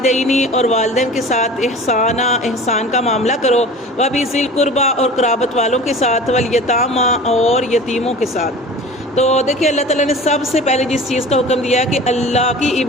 اور والدین کے ساتھ احسان کا معاملہ کرو وبذی القربی اور قرابت والوں کے ساتھ والیتامی اور یتیموں کے ساتھ۔ تو دیکھیے اللہ تعالیٰ نے سب سے پہلے جس چیز کا حکم دیا ہے کہ اللہ کی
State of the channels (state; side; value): normal; both; correlation 0.39